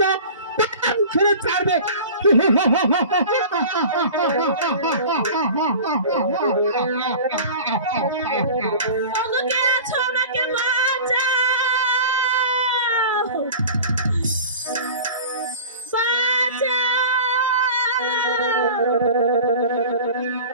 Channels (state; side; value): inverted; both; correlation -0.38